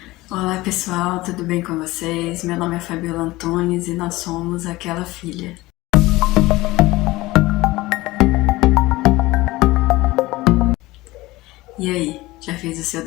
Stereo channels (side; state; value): right; quieter; 19.5 dB